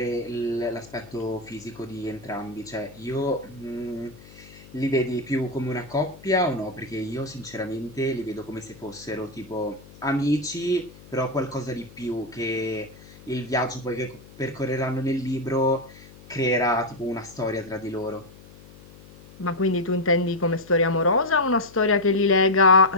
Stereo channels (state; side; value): noise; left; hum, 21 dB below the sound